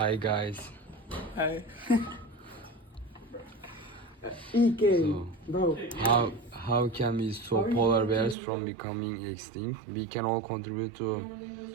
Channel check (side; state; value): left; drops out; at 8.3 s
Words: guys. Hi. So, Bro. how can we stop polar bears from becoming extinct? We can all contribute